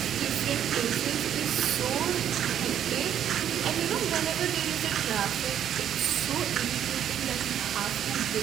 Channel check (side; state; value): left; quieter; 9.9 dB